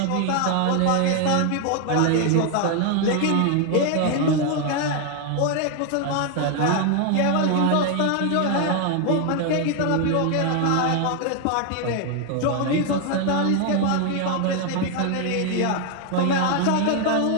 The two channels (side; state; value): both; different; correlation 0.01